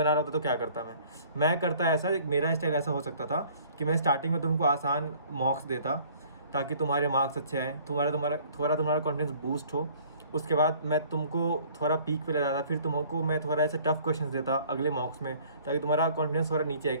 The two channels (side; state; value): both; inverted; correlation -0.54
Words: रहा होता तो क्या करता मैं करता ऐसा, मेरा स्टाइल ऐसा हो सकता था कि मैं स्टार्टिंग में तुमको आसान मॉक्स देता ताकि तुम्हारे मार्क्स अच्छे आए, तुम्हारा कॉन्फिडेंस बूस्ट हो। उसके बाद मैं तुमको थोड़ा पीक पे ले जाता, फिर तुमको मैं थोड़ा ऐसे टफ क्वेश्चंस देता अगले मॉक्स में, ताकि तुम्हारा कॉन्फिडेंस थोड़ा नीचे है